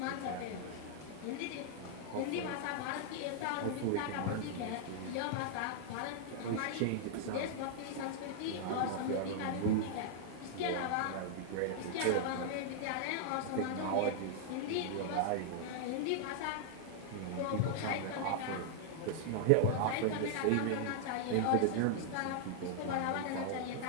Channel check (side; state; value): both; different; correlation -0.01